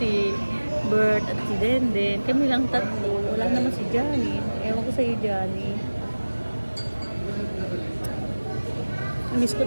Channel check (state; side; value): inverted; both; correlation -1.00